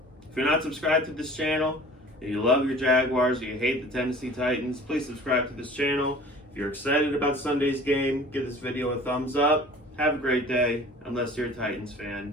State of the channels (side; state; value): both; normal; correlation 0.45